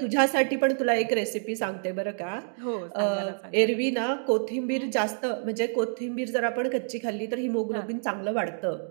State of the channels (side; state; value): left; silent; digital silence